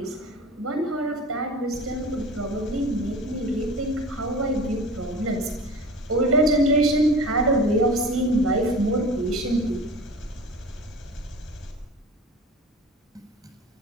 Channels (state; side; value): normal; both; correlation 0.38